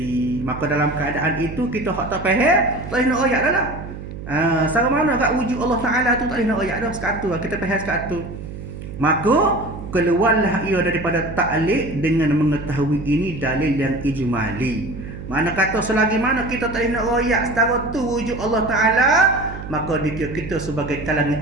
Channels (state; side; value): noise; right; hum, 11 dB below the sound